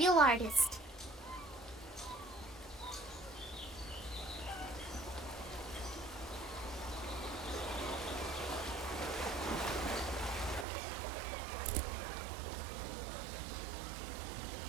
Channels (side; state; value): left; drops out; at 10.7 s